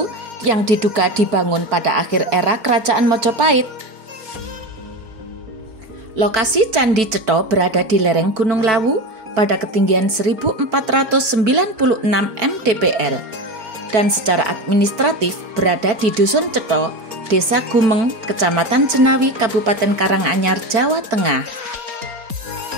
yang diduga dibangun pada akhir era Kerajaan Majapahit. Lokasi Candi Cetha berada di lereng Gunung Lawu pada ketinggian 1496 mdpl dan secara administratif berada di Dusun Cetha, Desa Gumeng, Kecamatan Jenawi, Kabupaten Karanganyar, Jawa Tengah.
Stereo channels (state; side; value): late; left; 4.5 ms